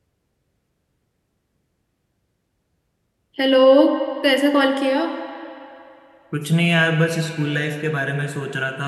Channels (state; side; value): identical; both; correlation 1.00